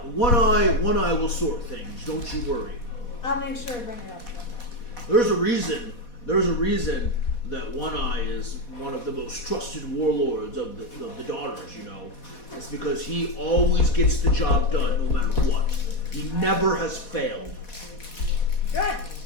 One eye will sort things. Don't you worry. I'll make sure to bring it up. There's a reason that One Eye is one of the most trusted warlords of the daughters, you know. It's because he always gets the job done no matter what. He never has failed. Good.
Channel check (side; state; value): right; late; 4.1 ms